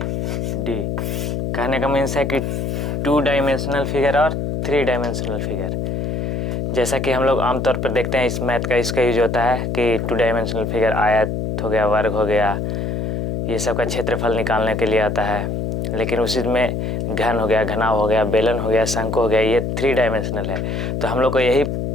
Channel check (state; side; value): noise; left; hum, 2 dB below the sound